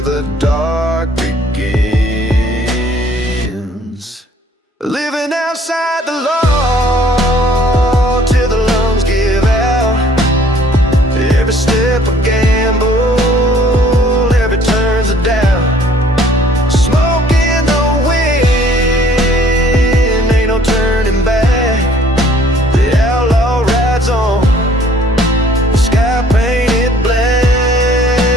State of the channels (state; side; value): normal; both; correlation 0.58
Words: dark begins. Living outside the law, till the lungs give out. Every step a gamble, every turn's a doubt. Smoke in the wind, ain't no turning back. The outlaw rides on, the sky painted black.